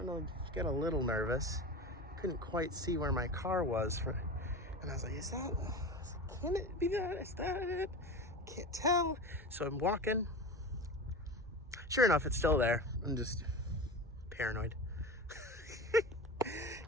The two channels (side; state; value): both; normal; correlation 0.29